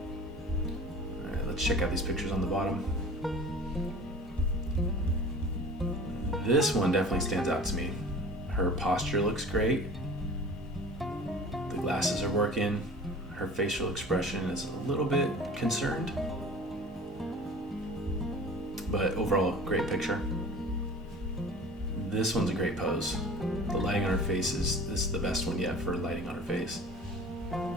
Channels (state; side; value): normal; both; correlation 0.41